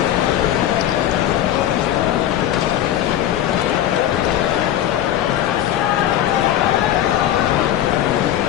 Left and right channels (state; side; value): quieter; right; 11.8 dB